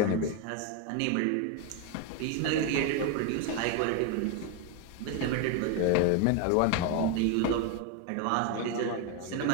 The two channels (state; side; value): different; both; correlation 0.01